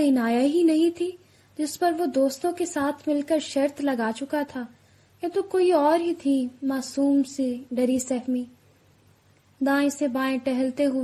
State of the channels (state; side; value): identical; both; correlation 1.00